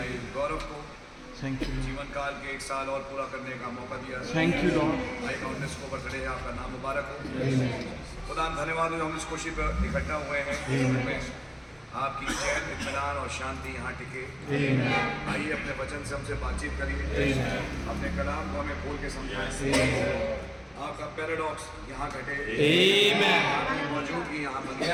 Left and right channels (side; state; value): both; identical; correlation 1.00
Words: गौरव को थैंक यू जीवन काल के 1 साल और पूरा करने का मौका दिया। Thank you Lord. भाई काउंटनेस को बर्थडे है, आपका नाम मुबारक हो। खुदा धन्यवाद हो, हम इस खुशी पर इकट्ठा हुए हैं। आपकी चैन, इत्मीनान और शांति यहाँ टिके। आइए अपने वचन से हमसे बातचीत करिए, अपने कलाम को हमें खोल के समझाएं। आपका पैराडॉक्स यहाँ घटे, आपकी मौजूदगी यहाँ बन